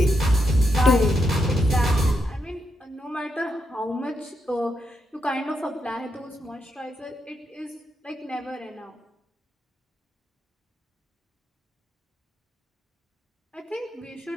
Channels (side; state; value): both; normal; correlation 0.82